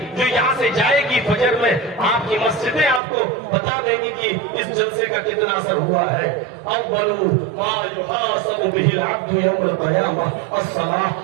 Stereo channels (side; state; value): left; drops out; at 3.0 s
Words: جو یہاں سے جائے گی فجر میں, آپ کی مسجدیں آپ کو بتا دیں گی کہ اس جلسے کا کتنا اثر ہوا ہے. اول ما یحاسب به العبد یوم القیامہ الصلاۃ,